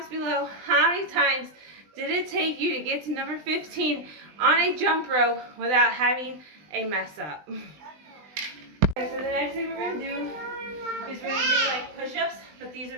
below how many times did it take you to get to number 15 on a jump rope without having a mess up. Okay, so the next thing we're going to do is we're going to do like push-ups, but these are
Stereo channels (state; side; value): late; left; 20 ms